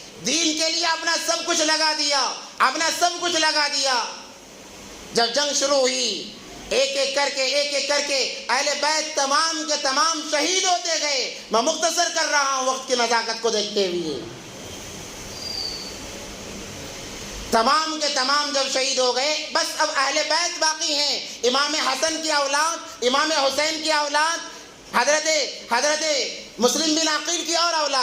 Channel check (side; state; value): both; identical; correlation 1.00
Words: دین کے لیے اپنا سب کچھ لگا دیا، اپنا سب کچھ لگا دیا۔ جب جنگ شروع ہوئی، ایک ایک کر کے اہل بیت تمام کے تمام شہید ہوتے گئے۔ میں مختصر کر رہا ہوں وقت کی نزاکت کو دیکھتے ہوئے۔ تمام کے تمام جب شہید ہو گئے، بس اب اہل بیت باقی ہیں، امام حسن کی اولاد، امام حسین کی اولاد، حضرت مسلم بن عقیل کی اور